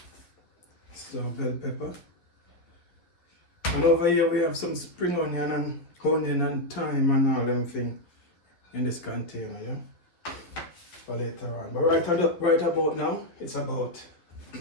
So bell pepper. And over here we have some spring onion and thyme and all them things in this container. Yeah. For later on. But right about now, it's about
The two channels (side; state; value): right; late; 11 ms